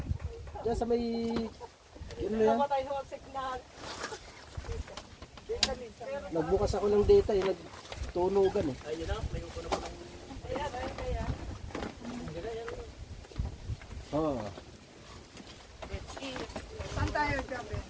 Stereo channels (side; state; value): both; identical; correlation 1.00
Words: Diyan sa may... Yun na yan. Namatay sa signal. Nagbukas ako ng data eh. Nagtunugan eh. Ayun na, may upo na po ng... Kaya. Oo. Saan tayo, Gabi?